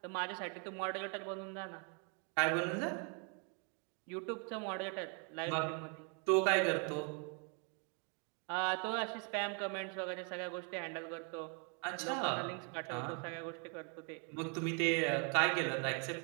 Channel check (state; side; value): quieter; left; 37.9 dB